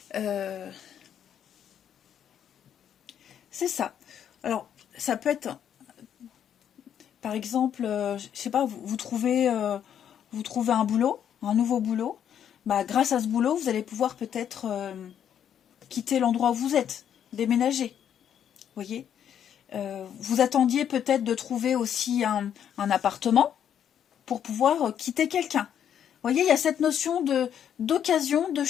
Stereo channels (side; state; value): right; quieter; 9.2 dB